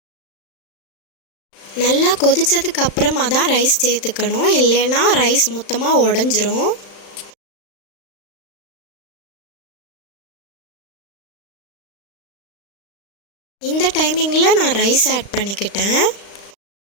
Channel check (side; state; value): right; late; 35 ms